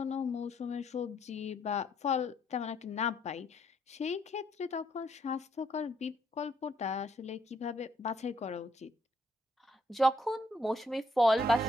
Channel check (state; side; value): normal; both; correlation 0.71